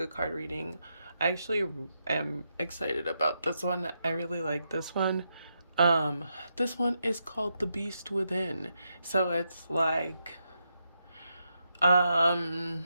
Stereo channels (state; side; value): inverted; both; correlation -0.83